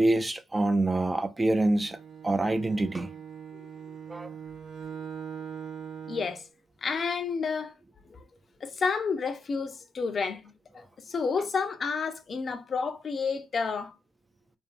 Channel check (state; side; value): normal; both; correlation 0.87